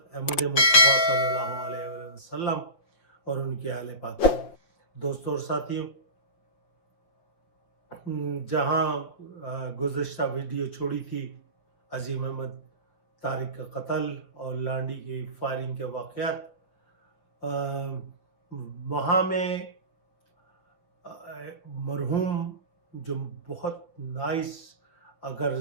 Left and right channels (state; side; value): late; right; 5.7 ms